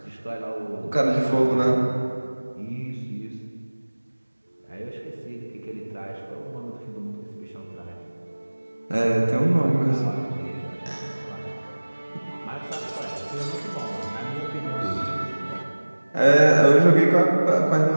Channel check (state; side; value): inverted; both; correlation -1.00